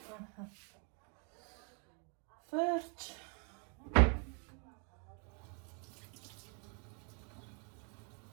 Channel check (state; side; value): quieter; left; 38.5 dB